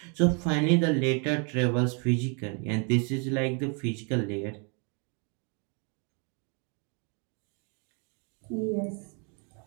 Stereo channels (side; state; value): left; quieter; 36.7 dB